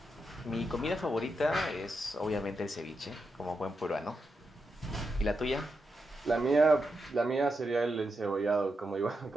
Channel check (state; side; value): normal; both; correlation 0.86